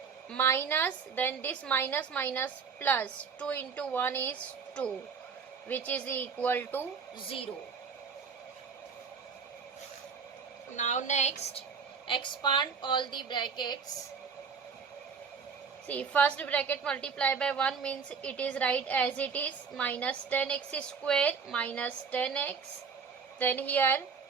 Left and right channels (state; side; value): quieter; left; 5.8 dB